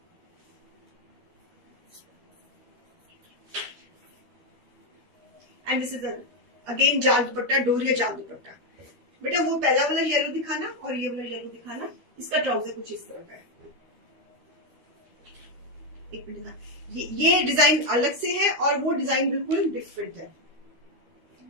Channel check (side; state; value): left; late; 13 ms